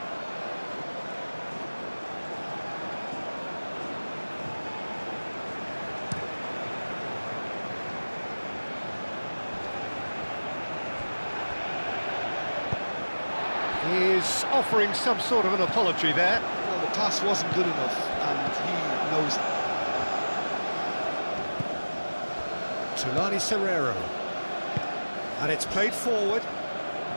He's offering some sort of an apology there. Well, the pass wasn't good enough, and he knows it. Tulani Serrero. And it's played forward.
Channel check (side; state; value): both; inverted; correlation -1.00